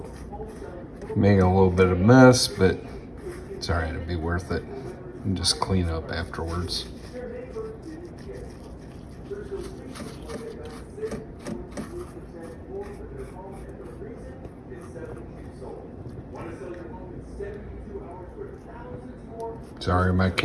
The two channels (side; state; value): both; identical; correlation 1.00